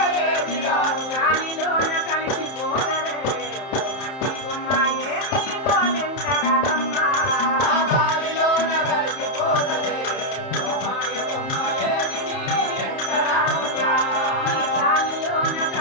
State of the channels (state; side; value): late; right; 31 ms